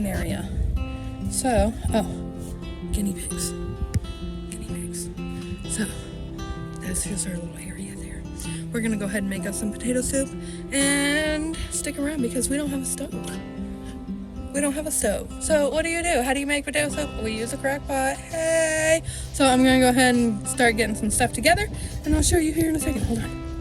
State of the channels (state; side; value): identical; both; correlation 1.00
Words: area. So, guinea pigs. So, that's just our little area there. We're gonna go ahead and make us some potato soup and stick around because we don't have a stove. So what do? How do you make potato soup? We use a crock pot. Hey! So I'm gonna go ahead and start getting some stuff together, and I'll show you here in a second. Hold on.